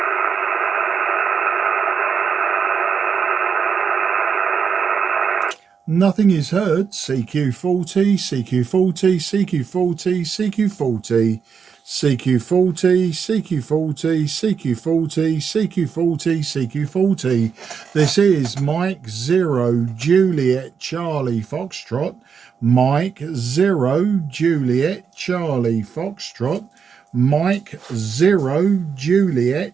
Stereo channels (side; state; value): left; quieter; 6.4 dB